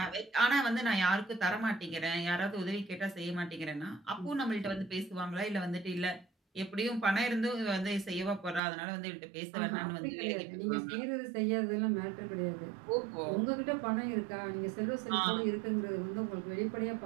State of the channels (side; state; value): left; drops out; at 8.6 s